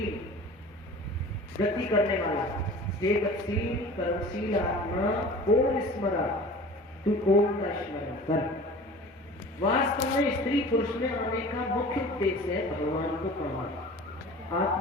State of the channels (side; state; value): both; normal; correlation 0.41